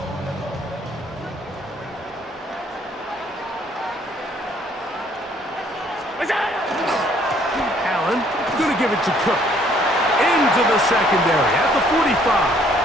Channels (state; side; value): normal; both; correlation 0.62